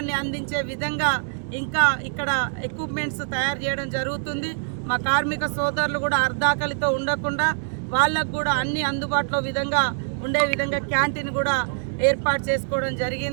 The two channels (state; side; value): silent; left; digital silence